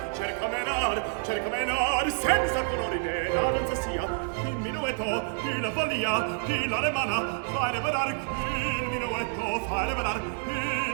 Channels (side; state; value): left; silent; 59 dB below the other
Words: cerca menar, cerca menar, senza colori né la danza sia, il minuetto, chi la follia, chi la remana, fa revelar, chi il minuetto fa revelar, chi